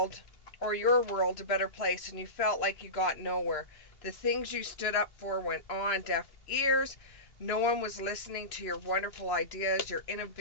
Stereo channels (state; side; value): late; right; 2.9 ms